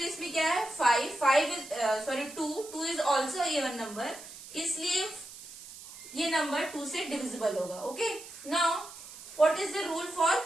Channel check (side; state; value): right; noise; hiss, 15 dB below the sound